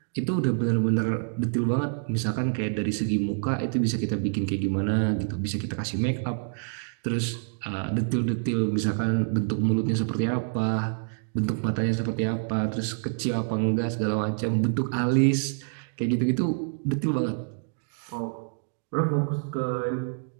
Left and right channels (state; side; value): silent; left; 59 dB below the other